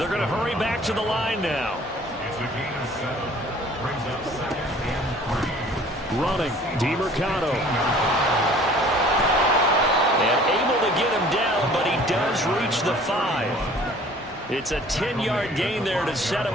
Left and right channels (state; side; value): normal; both; correlation 0.51